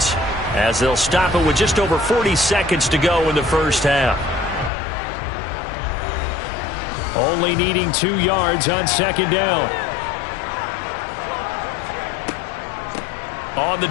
as they'll stop it with just over 40 seconds to go in the first half. Only needing 2 yards on second down. On the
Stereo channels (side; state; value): right; drops out; at 4.7 s